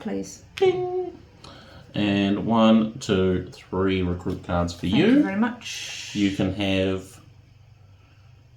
please. Ding. And 1, 2, 3 recruit cards for Thank you very much. You can have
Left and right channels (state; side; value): identical; both; correlation 1.00